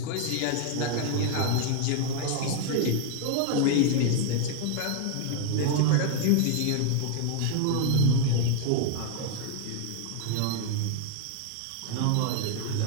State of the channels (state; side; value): different; both; correlation 0.00